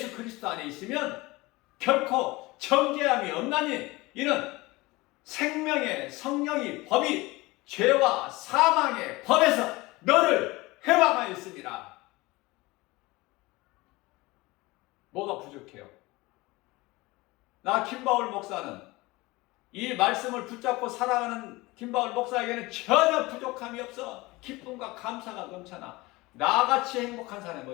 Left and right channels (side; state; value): right; quieter; 21.7 dB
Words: 그리스도 안에 있으면 결코 정죄함이 없나니 이는 생명의 성령이 법이 죄와 사망의 법에서 너를 해방하였습니다. 뭐가 부족해요? 나 김바울 목사는, 이 말씀을 붙잡고 살아가는 김바울 목사에게는 전혀 부족함이 없어. 기쁨과 감사가 넘쳐나. 나같이 행복한 사람이